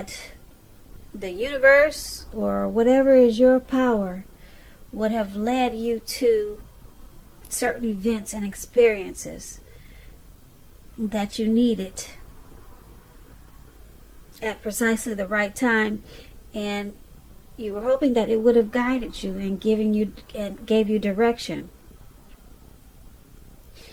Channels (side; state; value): both; identical; correlation 1.00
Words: the universe or whatever is your power would have led you to certain events and experiences that you needed at precisely the right time, and you were hoping that it would have guided you and gave you direction.